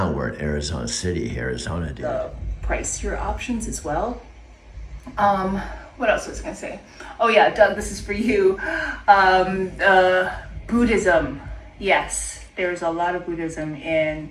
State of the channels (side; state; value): both; identical; correlation 1.00